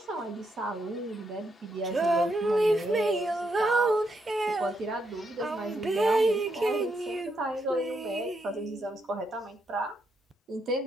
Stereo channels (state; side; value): normal; both; correlation 0.79